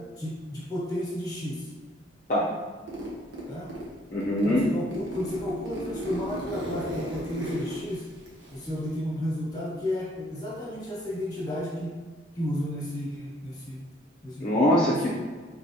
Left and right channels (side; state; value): both; normal; correlation 0.62